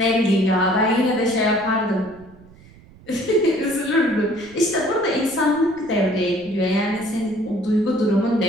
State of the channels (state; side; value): noise; right; rumble, 24 dB below the sound